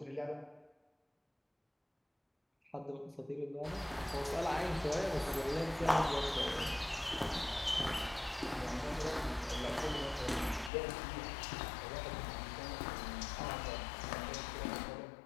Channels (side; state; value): right; drops out; at 10.7 s